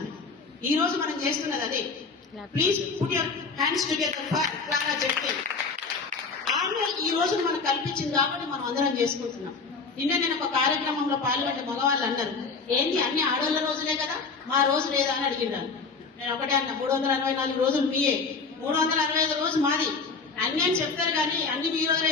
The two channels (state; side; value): quieter; right; 4.6 dB